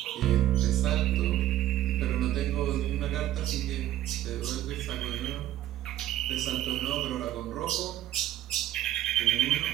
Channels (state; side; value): quieter; left; 13.3 dB